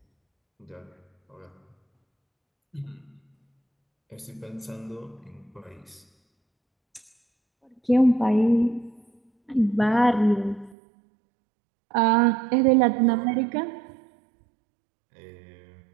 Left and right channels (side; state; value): left; drops out; at 10.8 s